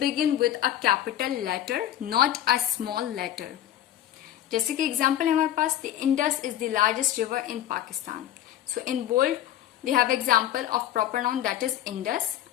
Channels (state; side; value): quieter; right; 11.9 dB